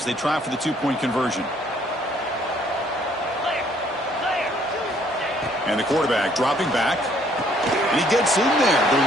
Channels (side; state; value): both; normal; correlation 0.64